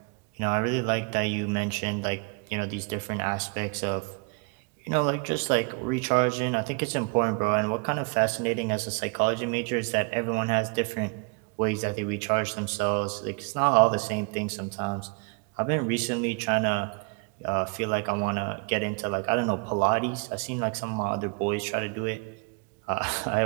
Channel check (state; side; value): quieter; left; 33.1 dB